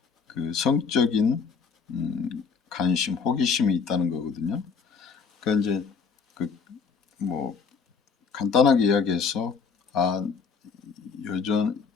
그 성적인 관심, 호기심이 있다는 거거든요. 그러니까 이제 그 뭐 간단하게 이야기해서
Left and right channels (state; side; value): quieter; right; 5.6 dB